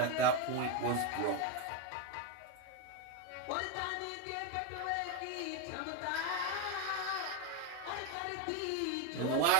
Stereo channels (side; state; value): both; different; correlation 0.02